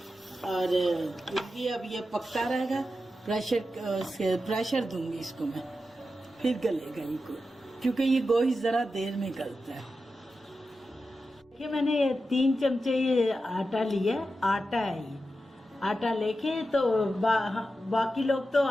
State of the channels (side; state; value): both; normal; correlation 0.90